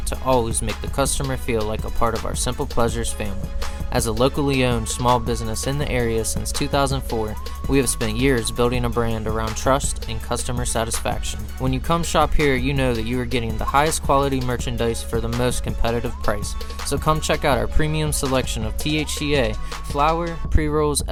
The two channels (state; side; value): identical; both; correlation 1.00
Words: to always make the customer feel like a part of our Simple Pleasures family. As a locally owned small business in the area since 2004, we have spent years building a brand around trust and customer satisfaction. When you come shop here, you know that you are getting the highest quality merchandise for the most competitive price. So come check out our premium selection of THCA, flower, pre-rolls,